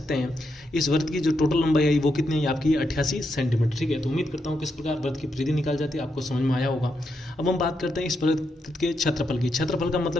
हैं इस वृत्त की जो टोटल लंबाई आई वो कितनी है आपकी 88 सेंटीमीटर। ठीक है, तो उम्मीद करता हूँ किस प्रकार वृत्त की परिधि निकाल जाती है आपको समझ में आया होगा। अब हम बात करते हैं इस वृत्त के क्षेत्रफल की। क्षेत्रफल का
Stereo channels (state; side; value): normal; both; correlation 0.82